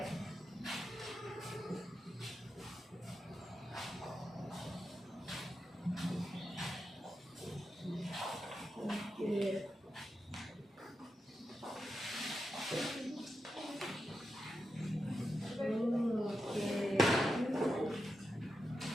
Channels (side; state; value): both; normal; correlation 0.88